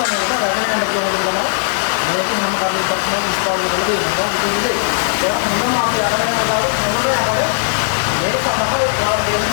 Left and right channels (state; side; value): silent; right; digital silence